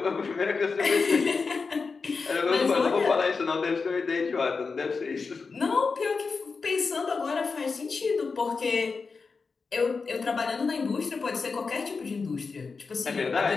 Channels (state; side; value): quieter; right; 4.7 dB